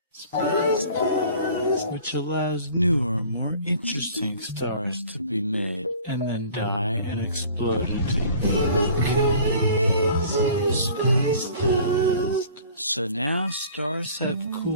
Space stars, which allows newer, more interesting stars to be made and then die and explode into crazy space dust. So now stars have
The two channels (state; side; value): inverted; both; correlation -0.48